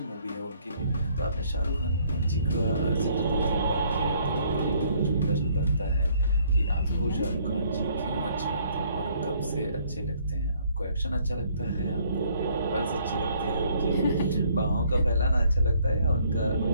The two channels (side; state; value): both; inverted; correlation -0.64